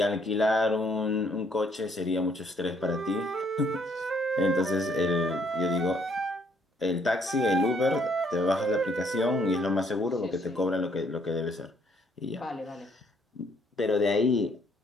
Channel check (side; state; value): both; normal; correlation 0.67